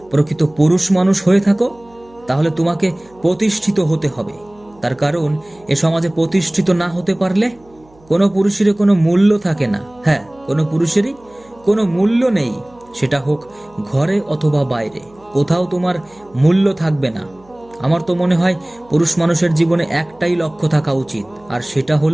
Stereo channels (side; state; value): right; noise; hum, 29 dB below the sound